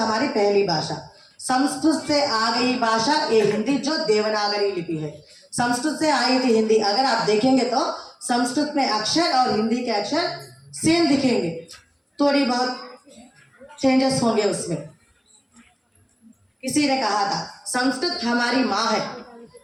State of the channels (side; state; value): both; identical; correlation 1.00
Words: पहली भाषा, संस्कृत से आ गई भाषा ये हिंदी, जो देवनागरी लिपि है, संस्कृत से आई थी हिंदी। अगर आप देखेंगे तो संस्कृत में अक्षर और हिंदी के अक्षर सेम दिखेंगे, थोड़ी बहुत चेंजेस होंगे उसमें। किसी ने कहा था, संस्कृत हमारी माँ है,